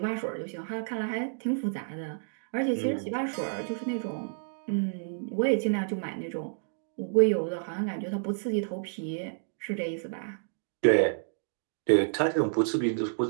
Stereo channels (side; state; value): left; silent; digital silence